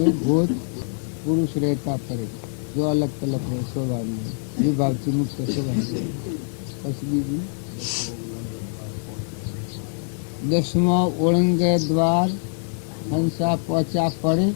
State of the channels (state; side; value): silent; right; 63 dB below the other